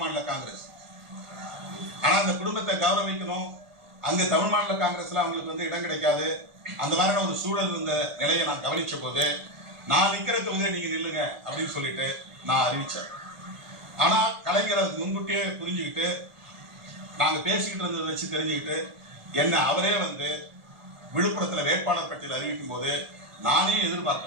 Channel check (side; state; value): left; late; 1.5 ms